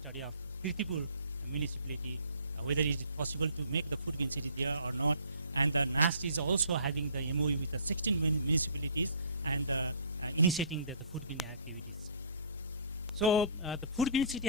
of Kirtipur municipality, whether it is possible to make the food green city there or not. And the NAST is also having the MOU with the 16 municipalities and initiating the food green activities. So the food green city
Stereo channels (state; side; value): inverted; both; correlation -0.51